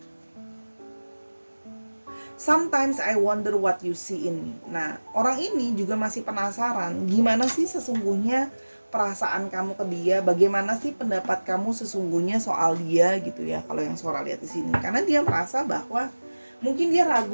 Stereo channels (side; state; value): both; inverted; correlation -1.00